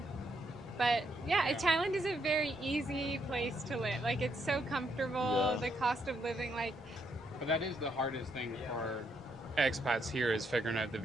But Thailand is a very easy place to live. Like it's so comfortable. The cost of living, But that is the hardest thing for expats here is figuring out the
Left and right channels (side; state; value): both; normal; correlation 0.75